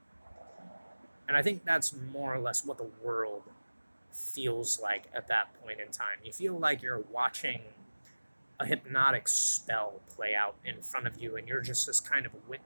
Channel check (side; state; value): both; inverted; correlation -1.00